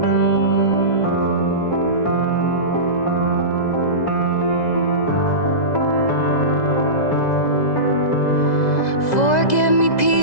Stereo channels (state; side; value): late; right; 2.0 ms